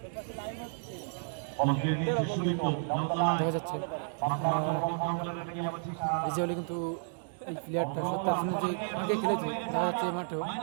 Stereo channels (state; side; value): silent; left; digital silence